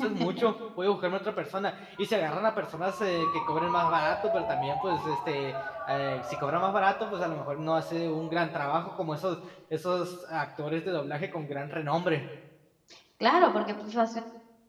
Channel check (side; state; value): both; identical; correlation 1.00